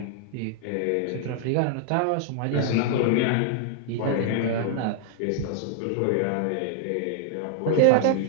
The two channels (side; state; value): both; different; correlation 0.00